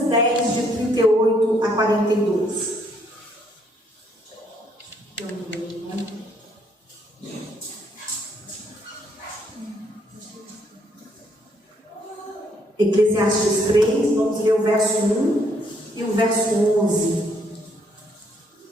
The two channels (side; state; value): both; normal; correlation 0.70